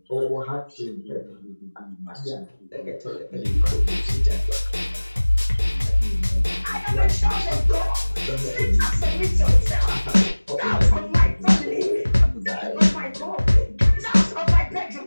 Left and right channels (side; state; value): both; inverted; correlation -1.00